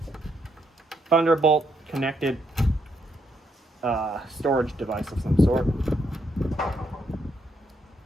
Thunderbolt connected storage device of some sort.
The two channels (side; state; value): both; normal; correlation 0.77